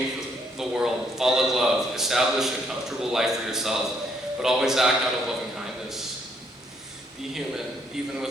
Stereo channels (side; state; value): both; normal; correlation 0.71